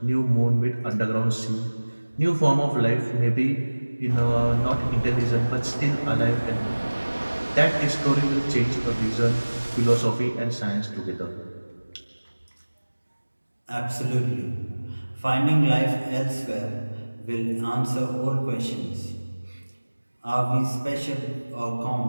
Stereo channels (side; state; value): both; inverted; correlation -1.00